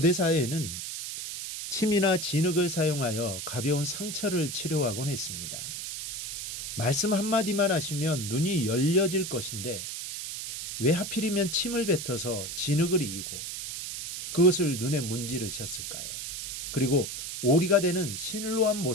사회에는 침이나 진흙을 사용하여 가벼운 상처를 치료하곤 했습니다. 말씀 한마디만 하시면 눈이 열려질 것인데 왜 하필이면 침을 뱉어서 진흙을 이기고 그것을 눈에 문지르셨을까요? 그리고 오리가 되는 실로암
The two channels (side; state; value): right; noise; hiss, 6 dB below the sound